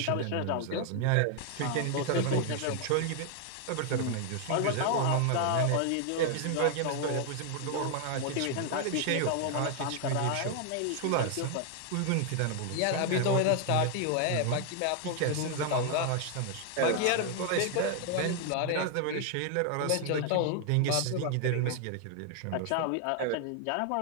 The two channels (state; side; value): different; both; correlation 0.00